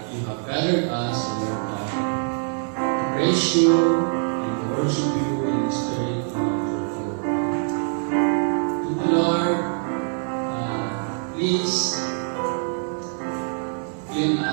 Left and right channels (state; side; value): silent; left; 57 dB below the other